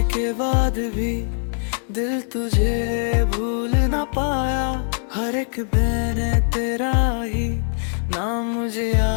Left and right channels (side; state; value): right; silent; digital silence